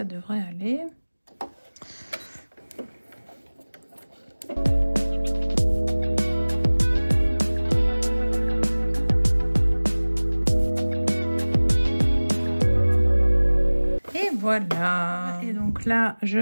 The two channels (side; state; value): both; inverted; correlation -1.00